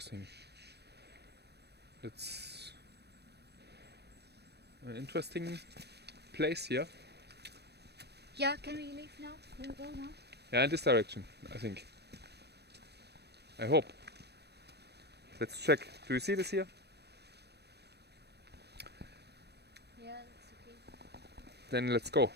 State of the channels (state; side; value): late; left; 0.48 ms